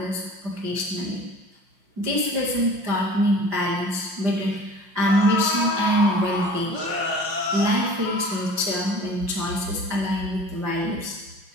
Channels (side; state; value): left; late; 5.6 ms